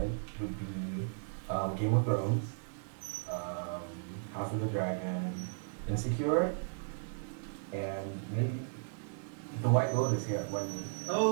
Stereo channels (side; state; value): left; silent; 54 dB below the other